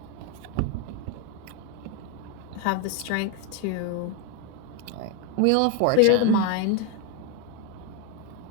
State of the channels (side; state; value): both; different; correlation 0.01